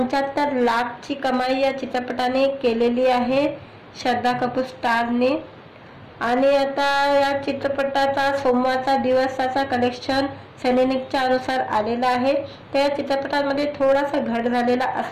लाखची कमाई या चित्रपटाने केलेली आहे, श्रद्धा कपूर स्टारने। आणि आता या चित्रपटाचा सोमवारचा दिवसाचा कलेक्शन सैनिकच्या अनुसार आलेला आहे। त्या चित्रपटामध्ये थोडासा घट झालेला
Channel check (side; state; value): both; identical; correlation 1.00